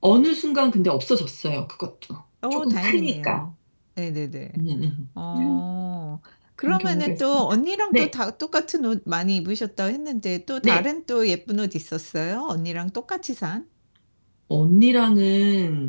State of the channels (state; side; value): inverted; both; correlation -1.00